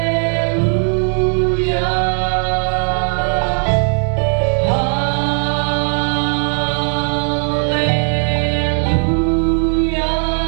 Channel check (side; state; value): left; silent; 58 dB below the other